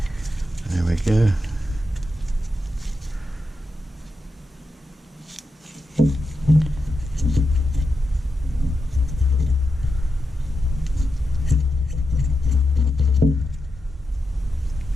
There we go.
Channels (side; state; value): both; normal; correlation 0.87